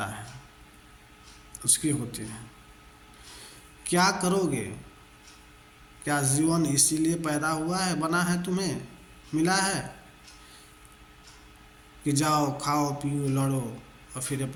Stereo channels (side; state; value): both; identical; correlation 1.00